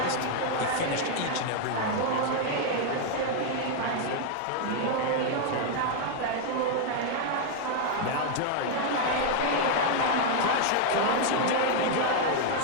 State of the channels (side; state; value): both; different; correlation 0.00